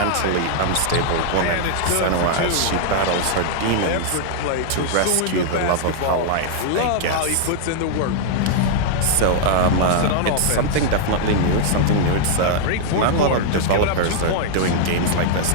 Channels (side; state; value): both; different; correlation -0.01